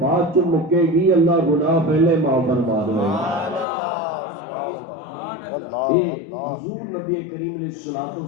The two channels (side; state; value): right; drops out; at 3.7 s